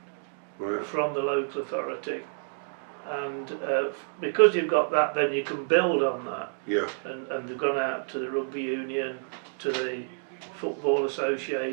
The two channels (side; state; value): left; silent; digital silence